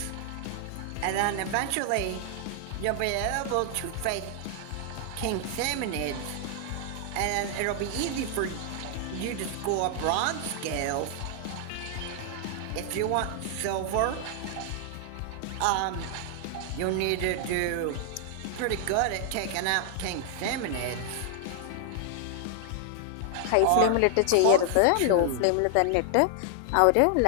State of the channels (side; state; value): both; different; correlation 0.00